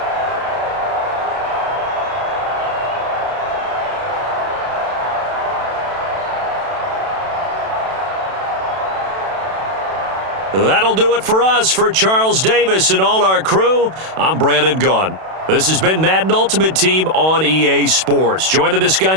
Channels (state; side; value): late; left; 32 ms